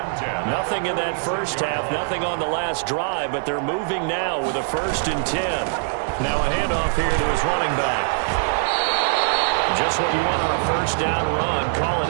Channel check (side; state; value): left; silent; digital silence